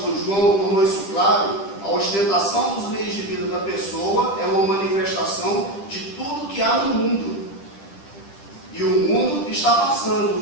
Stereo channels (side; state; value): right; late; 10 ms